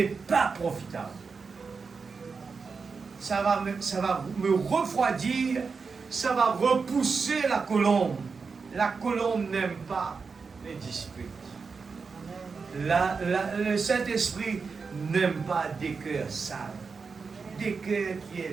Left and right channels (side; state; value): left; quieter; 5.0 dB